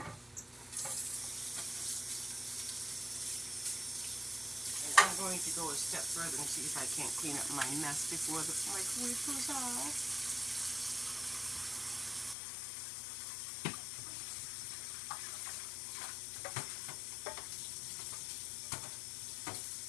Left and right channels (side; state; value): right; drops out; at 12.4 s